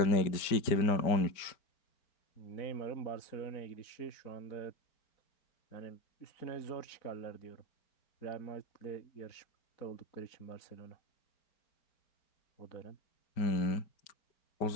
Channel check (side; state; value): right; late; 5.1 ms